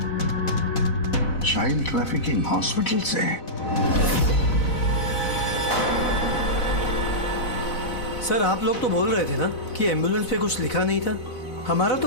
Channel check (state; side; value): late; right; 4.0 ms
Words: child trafficking hospital से। सर आप लोग तो बोल रहे थे ना कि एम्बुलेंस पे कुछ लिखा नहीं था। हमारा